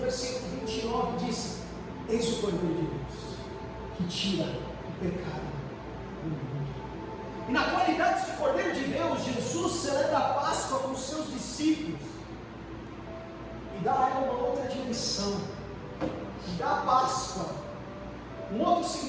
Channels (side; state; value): both; identical; correlation 1.00